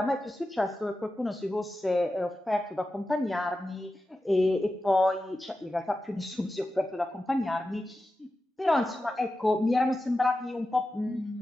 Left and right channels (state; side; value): normal; both; correlation 0.92